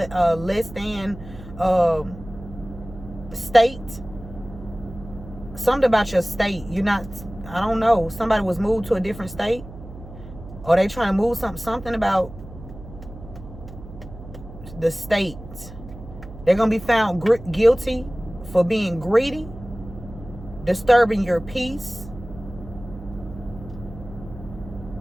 than state. Something about your state. You're not, I don't know. Somebody was moved to a different state. Or they trying to move something about the state. They're going to be found guilty for being greedy, disturbing your peace,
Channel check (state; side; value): noise; right; hum, 15 dB below the sound